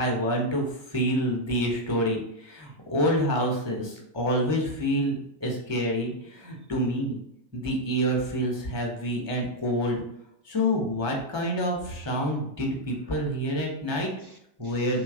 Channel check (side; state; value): left; late; 1.2 ms